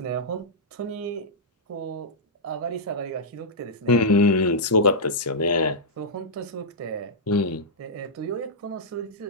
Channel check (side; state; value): both; normal; correlation -0.11